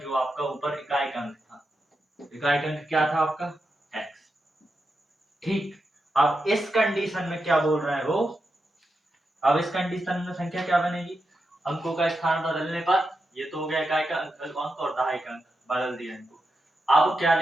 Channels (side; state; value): both; normal; correlation 0.88